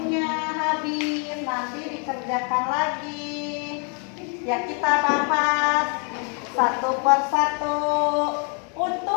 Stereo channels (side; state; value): right; quieter; 39.0 dB